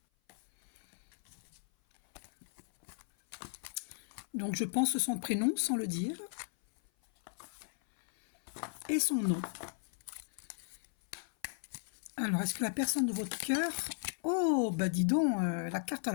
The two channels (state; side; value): silent; right; 54 dB below the other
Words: Donc je pense son prénom sans le dire et son nom. Alors est-ce que la personne de votre cœur... Oh bah dis donc, la carte